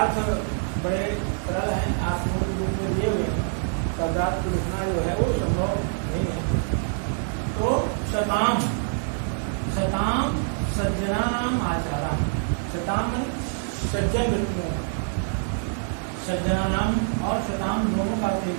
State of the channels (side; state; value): left; silent; 60 dB below the other